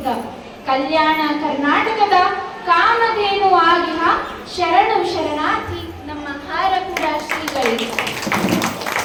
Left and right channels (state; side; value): identical; both; correlation 1.00